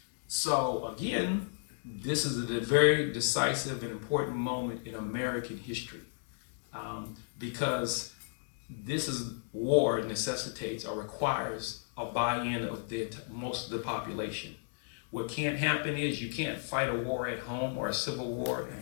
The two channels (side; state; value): right; silent; digital silence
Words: So again, this is a very decisive and important moment in American history because this is war necessitates or requires a buy-in of most of the population. What can't happen is you can't fight a war at home or a civil war and